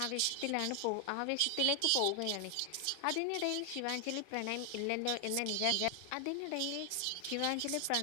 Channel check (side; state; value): both; different; correlation 0.00